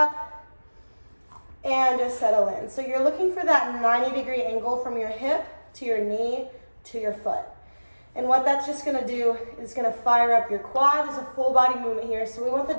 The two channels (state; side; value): inverted; both; correlation -1.00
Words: and just settle in. So you're looking for that 90-degree angle from your hip to your knee to your foot. And what that's just gonna do is gonna fire up your quad. There's a full body movement here. So we want the